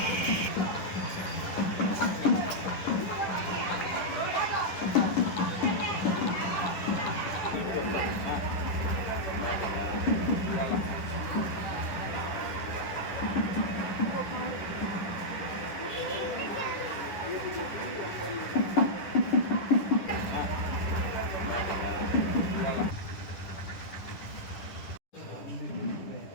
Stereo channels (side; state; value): right; late; 10 ms